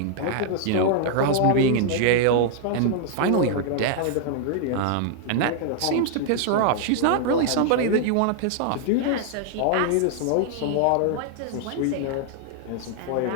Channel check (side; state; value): both; different; correlation -0.01